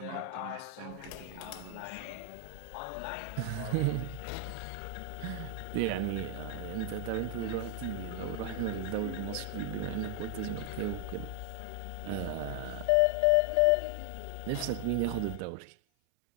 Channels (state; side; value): different; both; correlation 0.00